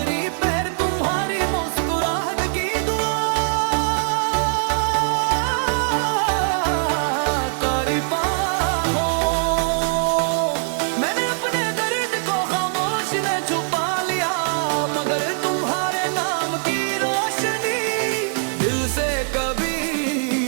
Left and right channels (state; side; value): silent; left; 61 dB below the other